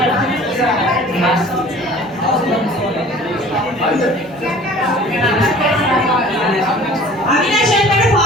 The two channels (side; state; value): both; normal; correlation 0.46